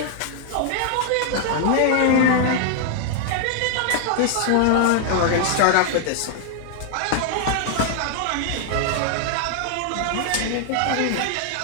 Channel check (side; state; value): both; different; correlation 0.00